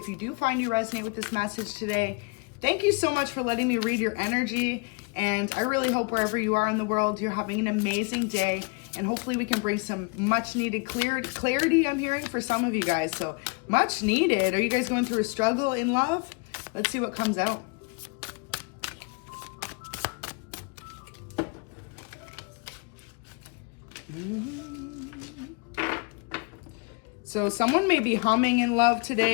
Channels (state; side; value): quieter; right; 31.8 dB